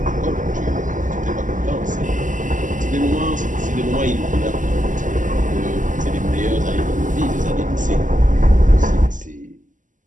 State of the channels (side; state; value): left; late; 0.37 ms